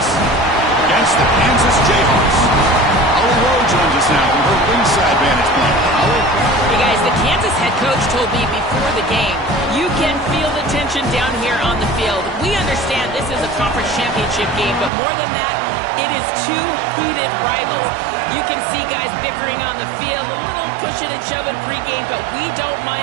against the Kansas Jayhawks. Holly Rowe joins us now from her ringside vantage point. Holly? Hey guys, the Kansas head coach told me before the game, you can feel the tension down here on the field. We understand this is a conference championship game, but more than that, it is two heated rivals. You can see guys bickering on the field, a little pushing and shoving pregame, but we don't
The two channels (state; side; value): drops out; left; at 14.9 s